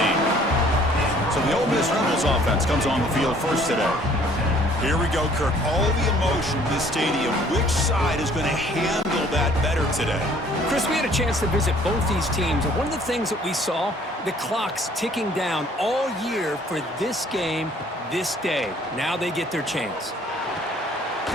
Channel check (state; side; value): normal; both; correlation 0.57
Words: So the Ole Miss Rebels offense comes on the field first today. Here we go, Kirk. All the emotion in this stadium. Which side is going to handle that better today? Chris, we had a chance to visit both these teams, and one of the things that we saw, the clock's ticking down all year for this game, this day. Now they get their chance.